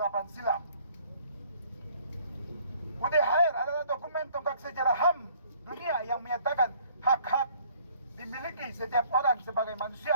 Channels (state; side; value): inverted; both; correlation -0.59